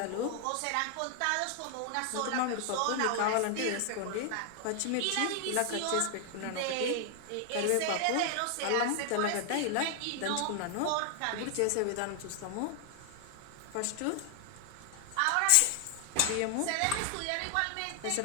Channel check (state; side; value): different; both; correlation 0.00